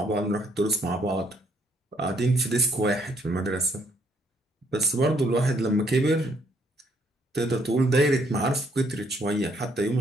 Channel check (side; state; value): both; normal; correlation 0.69